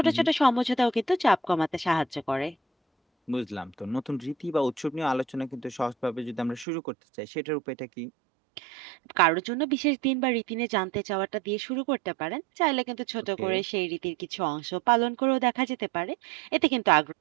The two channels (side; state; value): left; drops out; at 6.7 s